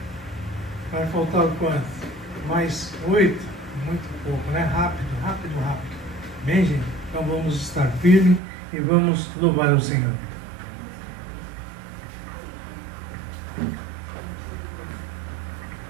Vai faltar quanto? Mais 8? Muito pouco, né? Rápido. Amém, gente? Então vamos estar firmes e vamos louvar o Senhor.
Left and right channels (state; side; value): drops out; left; at 8.4 s